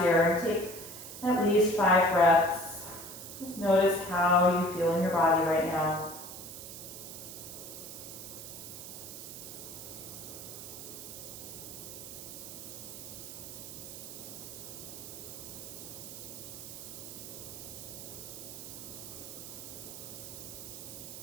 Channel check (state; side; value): noise; right; hiss, 10 dB below the sound